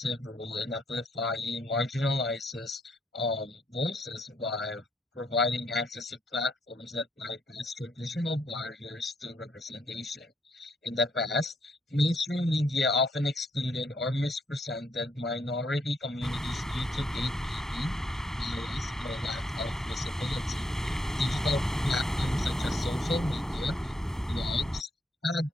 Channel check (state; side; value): normal; both; correlation 0.73